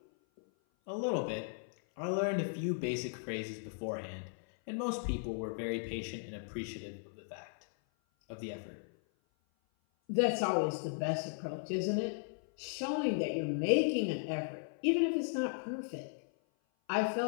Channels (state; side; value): silent; right; 54 dB below the other